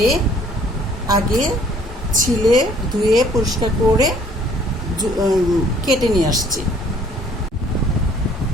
আগে ছিলে ধুয়ে পরিষ্কার করে কেটে নিয়ে আসছি।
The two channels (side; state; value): both; normal; correlation 0.59